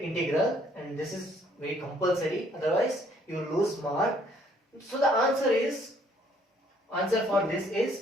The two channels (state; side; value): normal; both; correlation 0.64